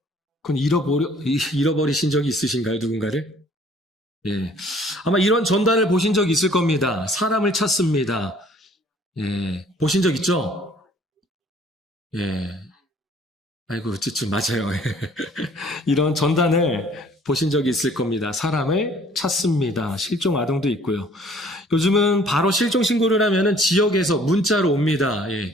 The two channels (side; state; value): both; normal; correlation 0.56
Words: 그건 잃어버리신 적이 있으신가요? 누군가를? 예. 아마 이런 전단을 보신 적 있을 겁니다. 사람을 찾습니다. 예. 보신 적 있죠? 예. 아이고, 좀 맞아요. 이런 전단을 보신 적이 있을 겁니다. 사람을 찾습니다. 실종 아동도 있고요. 요즘은 바로 실종 신고를 하면은 지역에서 문자로 옵니다.